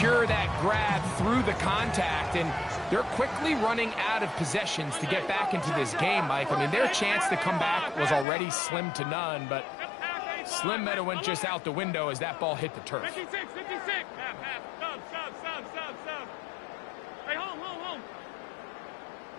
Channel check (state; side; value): drops out; right; at 8.2 s